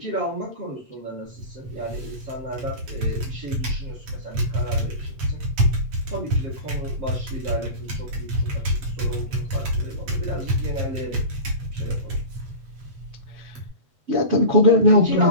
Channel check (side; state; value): left; late; 8.0 ms